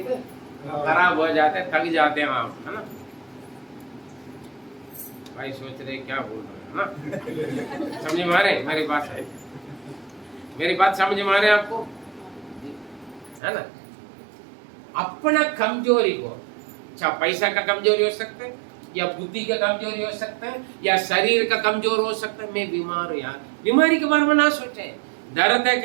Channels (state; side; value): drops out; left; at 13.4 s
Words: खराब हो जाते हैं, थक जाते हैं आप, है ना। भाई सोच रहे क्या बोल रहे हैं ना, समझ में आ रहे मेरी बात है? मेरी बात समझ में आ रहे आपको, है ना। अपना कमजोरी को, अच्छा पैसा का कमजोरी हो सकता है, या बुद्धि का कमजोरी हो सकता है, या शरीर का कमजोर हो सकता है। मैं बीमार हूं यार, बीमारी के बारे में ना सोचें। दर्द है